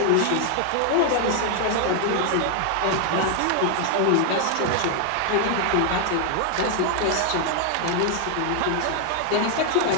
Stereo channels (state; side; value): different; both; correlation 0.00